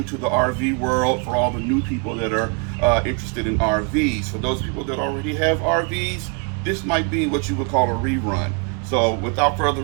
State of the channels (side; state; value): left; quieter; 35.9 dB